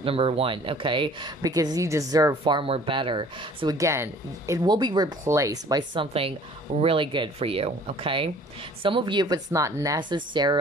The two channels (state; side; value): normal; both; correlation 0.51